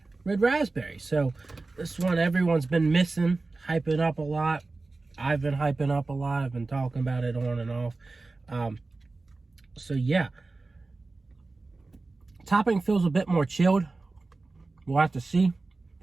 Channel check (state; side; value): quieter; left; 3.5 dB